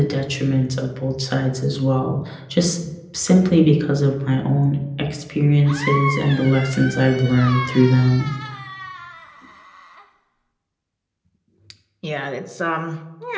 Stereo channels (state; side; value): identical; both; correlation 1.00